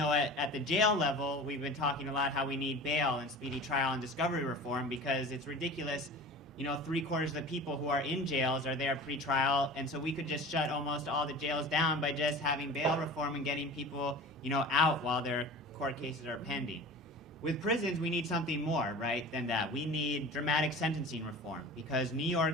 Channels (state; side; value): normal; both; correlation 0.37